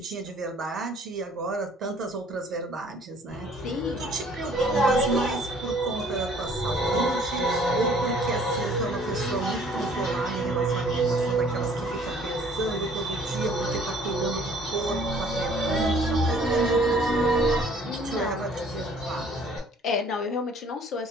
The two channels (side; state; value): both; normal; correlation 0.56